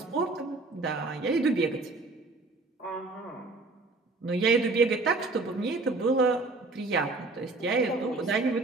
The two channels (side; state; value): left; quieter; 3.4 dB